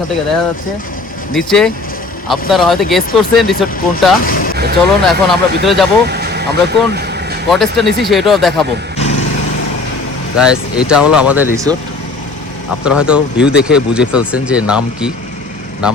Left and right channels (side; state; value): right; quieter; 3.5 dB